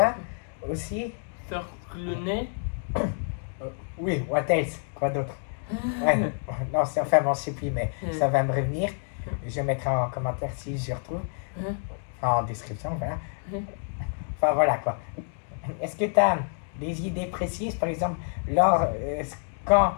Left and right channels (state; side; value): silent; right; 60 dB below the other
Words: aussi. Sur le nez? Oui, what else? Quoi d'autre? Ouais, non, enfin bon, je sais plus, mais ça va me revenir. Je mettrai en commentaire si je retrouve. En description, voilà. Enfin voilà quoi. Est-ce que tu as des idées précises, par exemple,